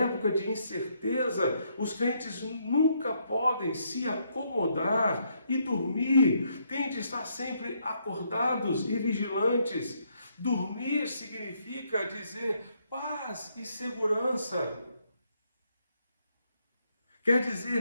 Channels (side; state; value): both; inverted; correlation -0.74